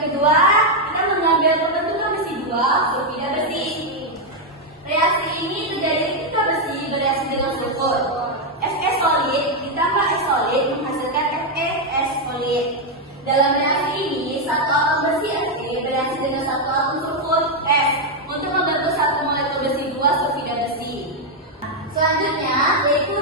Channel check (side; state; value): both; normal; correlation 0.02